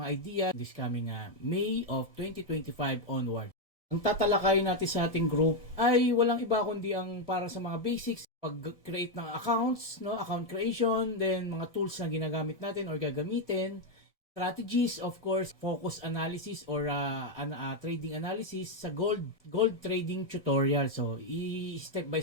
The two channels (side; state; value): both; normal; correlation 0.03